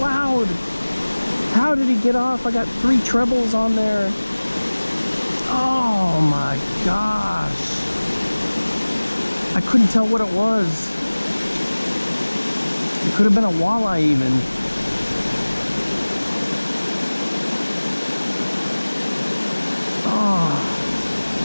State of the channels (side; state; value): both; inverted; correlation -1.00